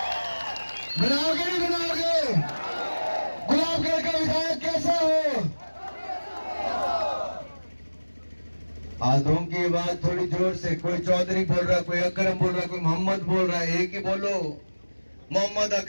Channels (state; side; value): inverted; both; correlation -1.00